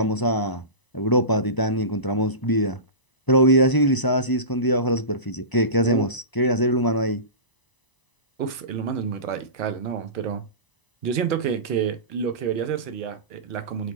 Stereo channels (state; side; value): late; right; 1.0 ms